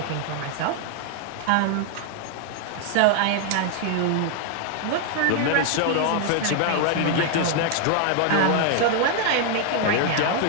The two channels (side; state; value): both; different; correlation 0.00